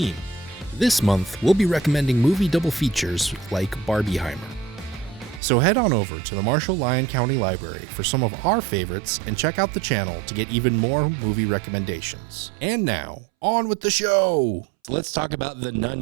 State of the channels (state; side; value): drops out; left; at 5.4 s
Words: This month, we'll be recommending movie double features like Barbieheimer. So head on over to the Marshall Lyon County Library for some of our favorites and check out the channel to get even more movie recommendations. And now, on with the show! Let's talk about The